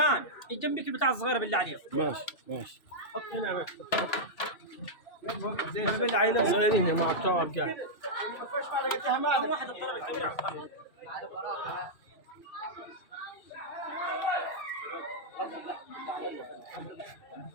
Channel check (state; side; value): late; right; 2.6 ms